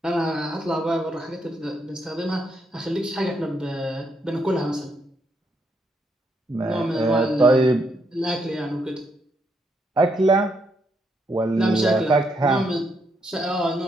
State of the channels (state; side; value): normal; both; correlation 0.77